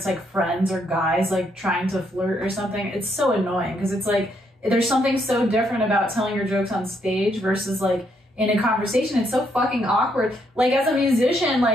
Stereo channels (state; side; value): normal; both; correlation 0.74